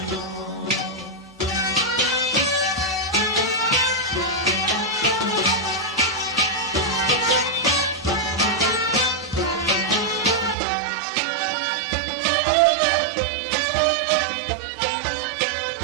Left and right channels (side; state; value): left; drops out; at 10.6 s